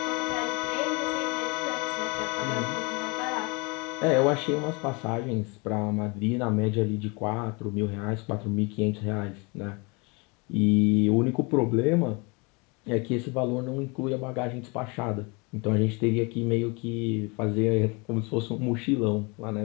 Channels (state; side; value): quieter; right; 29.3 dB